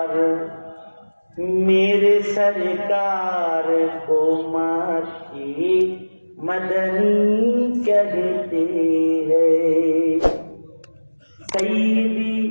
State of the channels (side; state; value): both; inverted; correlation -1.00